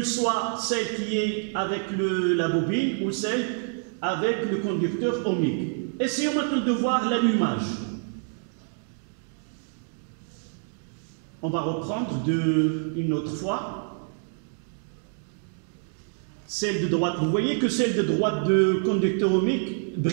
ce soit celle qui est avec la bobine ou celle avec le conducteur ohmique. Essayons maintenant de voir l'allumage. On va reprendre une autre fois. Celle de droite, vous voyez que celle de droite de conducteur ohmique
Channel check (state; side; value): silent; left; 59 dB below the other